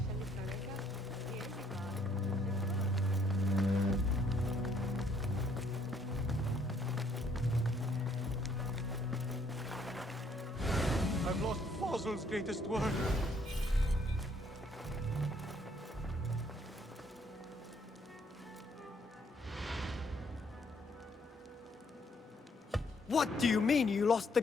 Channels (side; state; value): both; normal; correlation 0.67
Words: I've lost Fossil's greatest work. What do you mean you lost the